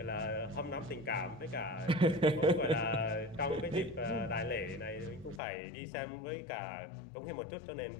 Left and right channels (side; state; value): right; drops out; at 5.4 s